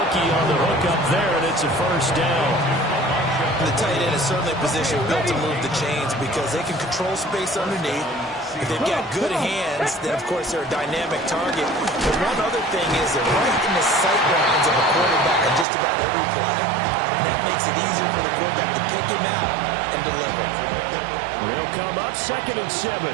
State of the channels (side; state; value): left; drops out; at 15.7 s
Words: on the hook up there, and it's a 1st down. The tight end is certainly a position built to move the chains because they can control space underneath. If they've got good hands, then, of course, they're a dynamic target. But one other thing is they're right in the sight lines of a quarterback on just about every play, and that makes it easier for the quarterback to pick him out and deliver. They'll come up 2nd and 7.